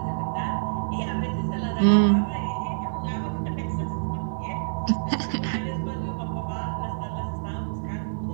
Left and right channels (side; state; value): left; silent; digital silence